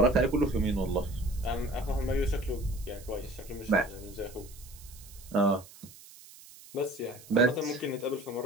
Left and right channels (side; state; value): right; noise; hiss, 20 dB below the sound